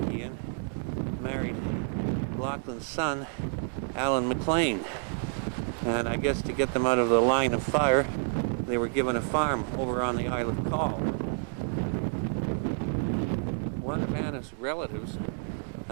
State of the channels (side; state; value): left; silent; 58 dB below the other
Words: son Alan McLean. And I guess to get them out of the line of fire, they were given a farm over on the Isle of Coll. One of Anna's relatives,